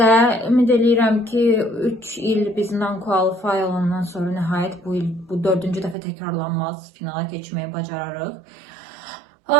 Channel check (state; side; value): drops out; left; at 6.0 s